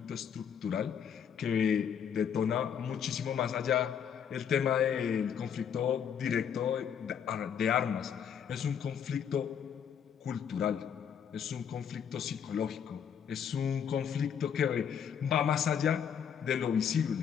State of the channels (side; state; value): right; quieter; 8.0 dB